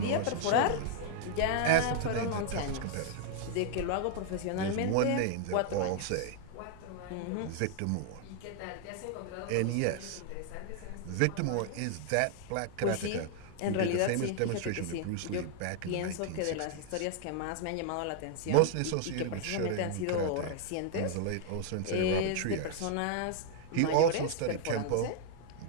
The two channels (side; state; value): both; different; correlation 0.00